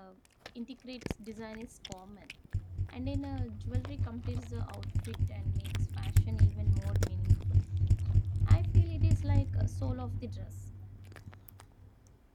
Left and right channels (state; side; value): identical; both; correlation 1.00